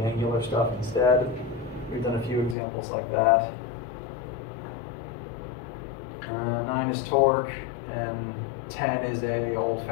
angular stuff instead. We've done a few examples like that. 9 is torque, and 10 is a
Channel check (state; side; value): drops out; right; at 2.6 s